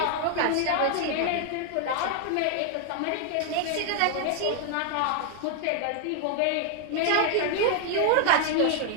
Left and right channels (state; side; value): different; both; correlation 0.00